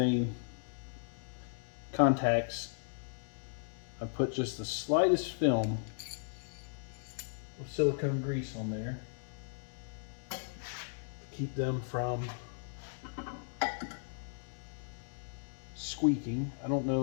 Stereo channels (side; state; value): right; silent; digital silence